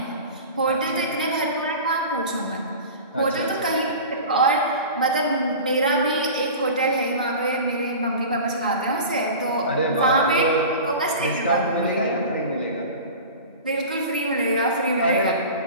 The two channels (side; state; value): both; inverted; correlation -0.35